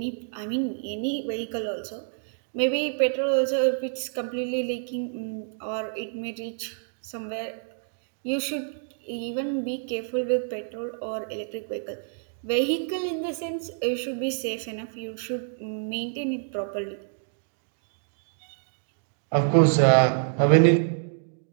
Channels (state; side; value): silent; left; digital silence